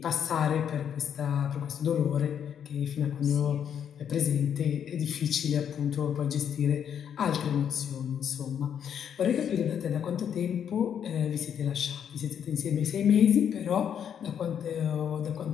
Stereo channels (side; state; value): right; quieter; 8.5 dB